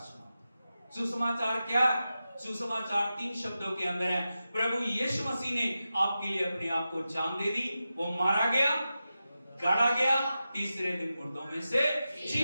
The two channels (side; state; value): both; inverted; correlation -0.91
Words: सुसमाचार क्या? सुसमाचार 3 शब्दों के अंदर है। प्रभु यीशु मसीह ने आपके लिए अपने आप को जान दे दी, वो मारा गया, गाड़ा गया, तीसरे दिन मुर्दों में से